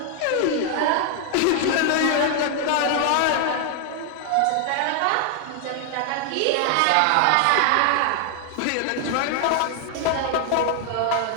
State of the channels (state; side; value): different; both; correlation 0.00